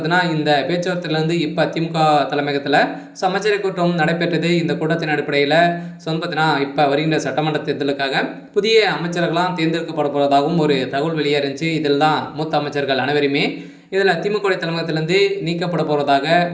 இந்த பேச்சுவார்த்தையிலேருந்து இப்போ திமுக தலைமையகத்தில் அமைச்சரவை கூட்டம் நடைபெற்றது. இந்த கூட்டத்தின் அடிப்படையில் பார்த்தீங்கன்னா இப்போ வருகின்ற சட்டமன்ற தேர்தலுக்காக புதிய அமைச்சர்கள்லாம் தேர்ந்தெடுக்கப்பட போவதாகவும் ஒரு தகவல் வெளியே இருந்துச்சு. இதில் தான் மூத்த அமைச்சர்கள் அனைவருமே இதில் திமுக தலைமையகத்திலேருந்து நீக்கப்பட போவதாக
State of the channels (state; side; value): identical; both; correlation 1.00